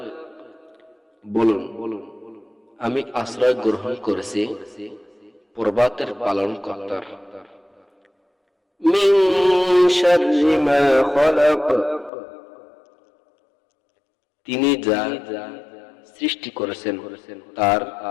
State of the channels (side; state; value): right; drops out; at 12.1 s